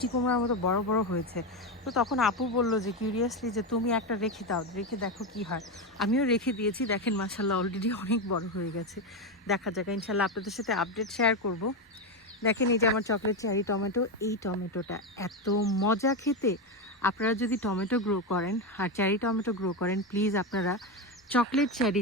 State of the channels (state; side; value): normal; both; correlation 0.12